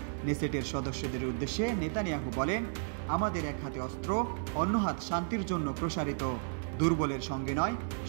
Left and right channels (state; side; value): silent; left; digital silence